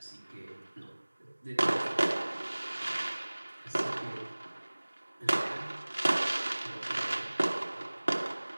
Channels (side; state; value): both; inverted; correlation -1.00